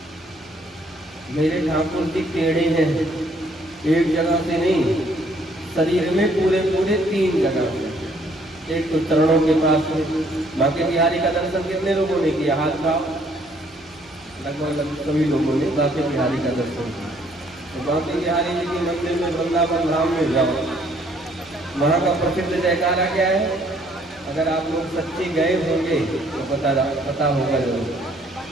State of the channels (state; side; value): normal; both; correlation 0.64